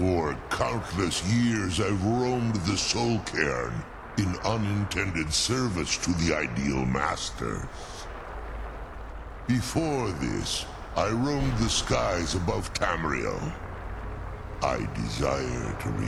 countless years I've roamed the Soul Cairn in unintended service to the Ideal Masters. Before this, I roamed the skies above Tamriel. I desire to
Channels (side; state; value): both; identical; correlation 1.00